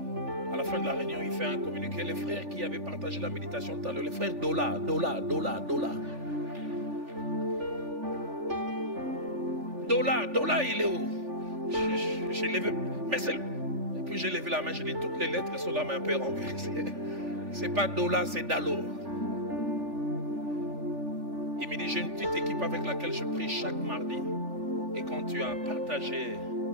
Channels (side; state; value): left; late; 3.4 ms